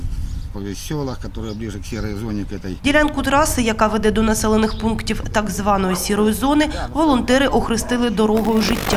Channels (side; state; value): both; identical; correlation 1.00